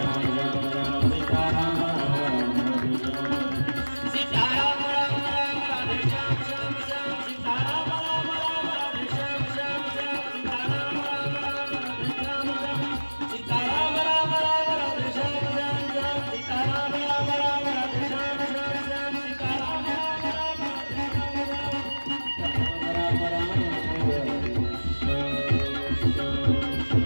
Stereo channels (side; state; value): both; inverted; correlation -1.00